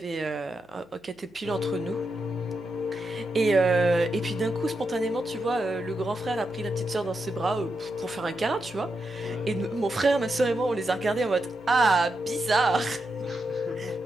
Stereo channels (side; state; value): left; noise; hum, 29 dB below the sound